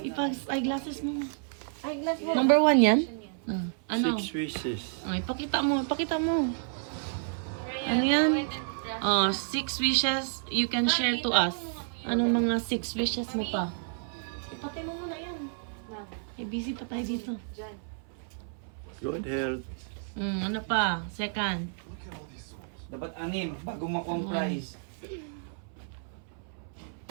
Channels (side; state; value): left; silent; 57 dB below the other